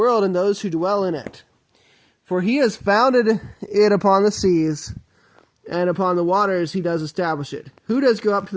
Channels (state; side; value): identical; both; correlation 1.00